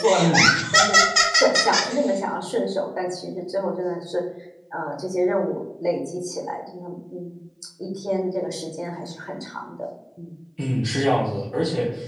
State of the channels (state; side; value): identical; both; correlation 1.00